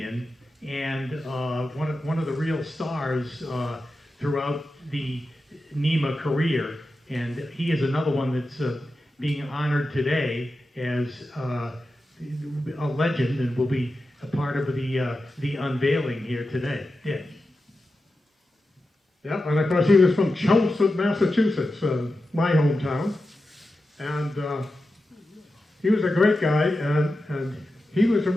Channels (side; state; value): both; normal; correlation 0.91